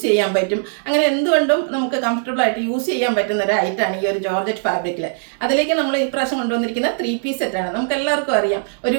ചെയ്യാൻ പറ്റും. അങ്ങനെ എന്തുകൊണ്ടും നമുക്ക് കംഫർട്ടബിൾ ആയിട്ട് യൂസ് ചെയ്യാൻ പറ്റുന്ന ഒരു ഐറ്റാണ് ഈ ഒരു ജോർജറ്റ് ഫാബ്രിക്കിൽ. അതിലേക്ക് നമ്മൾ ഇപ്രാവശ്യം കൊണ്ടുവന്നിരിക്കുന്ന 3 പീസ് സെറ്റാണ്. നമുക്ക് എല്ലാവർക്കും അറിയാം, ഒരു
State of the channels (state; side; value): silent; left; digital silence